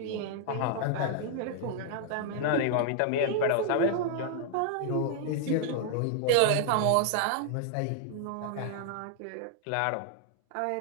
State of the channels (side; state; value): both; different; correlation 0.00